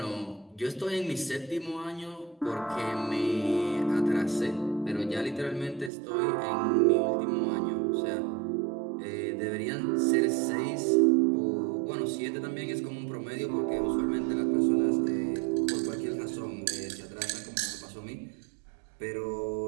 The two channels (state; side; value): drops out; left; at 5.9 s